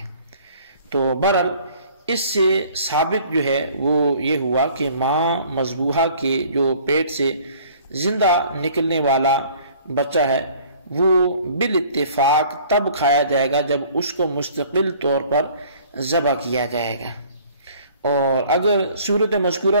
تو بہرحال اس سے ثابت جو ہے وہ یہ ہوا کہ ماں مذبوحہ کے جو پیٹ سے زندہ نکلنے والا بچہ ہے وہ بالاتفاق تب کھایا جائے گا جب اس کو مستقل طور پر ذبح کیا جائے گا، اور اگر صورت مذکورہ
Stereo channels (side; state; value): both; inverted; correlation -0.53